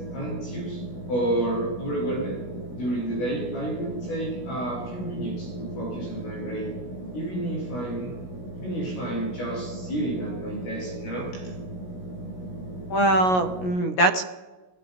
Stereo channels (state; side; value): late; right; 16 ms